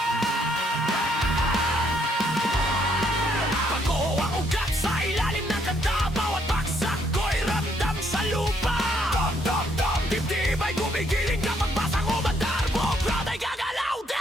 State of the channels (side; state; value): both; normal; correlation 0.71